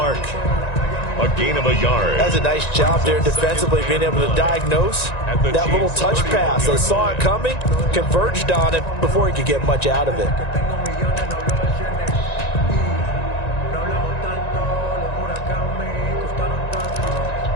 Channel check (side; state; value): right; late; 1.9 ms